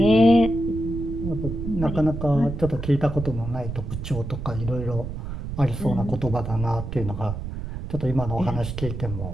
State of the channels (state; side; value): noise; right; rumble, 7 dB below the sound